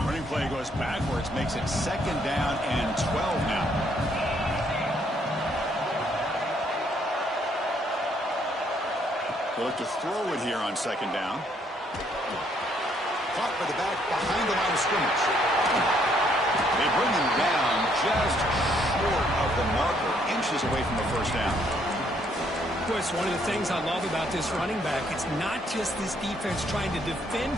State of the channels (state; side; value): normal; both; correlation 0.69